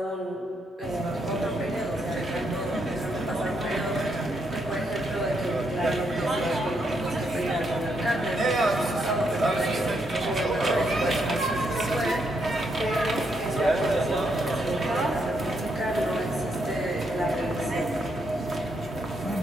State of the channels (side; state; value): both; normal; correlation 0.77